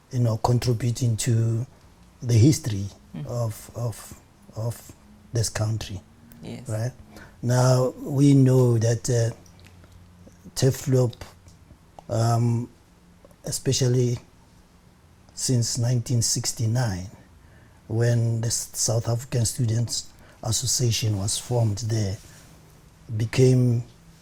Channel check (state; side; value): identical; both; correlation 1.00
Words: contributing to the history of this country, Yes. right? Now we know that TEFLOP, especially since 1969, when the South African Students Association was formed there, became